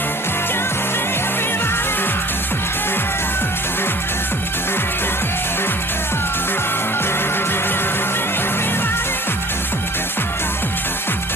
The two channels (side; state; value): both; normal; correlation 0.48